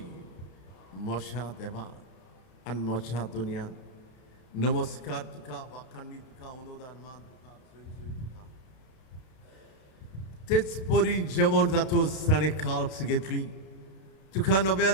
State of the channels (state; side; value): late; right; 32 ms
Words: मोशा देवा आनी मोशा दुनियान नमस्कार तुका, वाखाणणी तुका, अनुदान मान तुका, सोय तुका. तेच परी जेवण जातूच ताणें काल्स घेतली. तुका